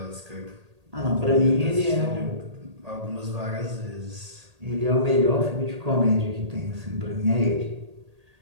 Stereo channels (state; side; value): late; left; 1.8 ms